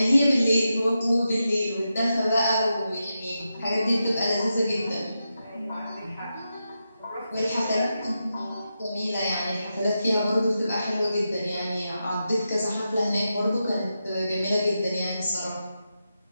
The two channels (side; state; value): both; inverted; correlation -0.88